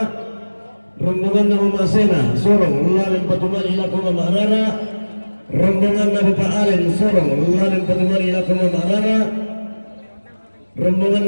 Rombongan Mama Sena Sorong Lualim Banyuwangi lagu Mama Rara. Rombongan Bapak Alen Sorong Lualim Banyuwangi lagu Mama Rara. Rombongan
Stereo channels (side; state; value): both; inverted; correlation -1.00